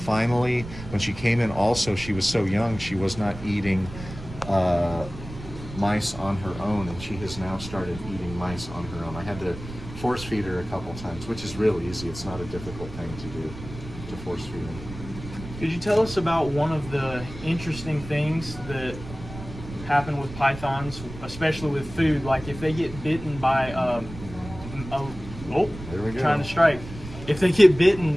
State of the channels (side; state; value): right; noise; rumble, 13 dB below the sound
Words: when she came in also, she was so young, she was not eating mice on her own, and she has now started eating mice on her own. I had to force feed her a couple times, which is real easy. It's not a difficult thing to do, to force feed them. Could you tell us about one of the interesting things that happen with pythons, especially with food? Like if they get bitten by There we go. trying to strike. If they get